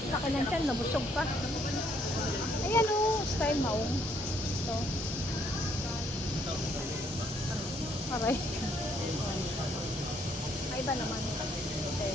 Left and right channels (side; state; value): both; normal; correlation 0.68